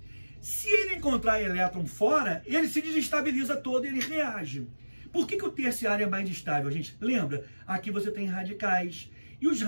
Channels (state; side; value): inverted; both; correlation -1.00